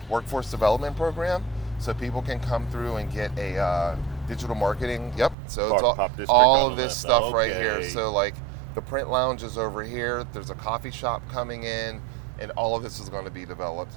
workforce development program, so people can come through and get a digital marketing. Yep, so it's all of this stuff right here. So like the print lounge is over here, there's a coffee shop coming in, and all of this is going to be developed.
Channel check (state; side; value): drops out; left; at 5.4 s